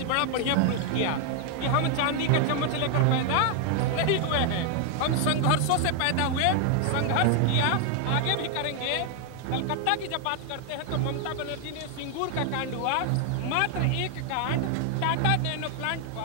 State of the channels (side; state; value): both; different; correlation 0.00